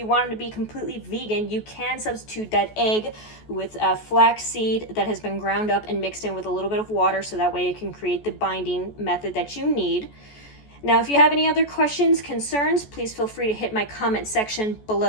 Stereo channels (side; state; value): right; late; 14 ms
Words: wanted to be completely vegan, you can substitute that egg with flax seed that has been ground up and mixed in with a little bit of water so that way it can create the binding method that you need. Now, if you have any other questions, concerns, please feel free to hit my comment section